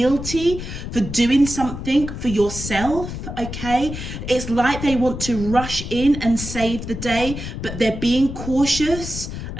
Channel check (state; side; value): noise; left; rumble, 8 dB below the sound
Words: for doing something for yourself, okay? It's like they want to rush in and save the day, but they're being cautious.